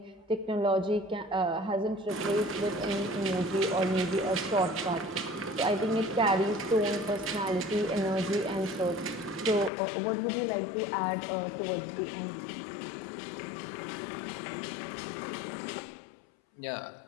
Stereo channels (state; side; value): drops out; right; at 9.7 s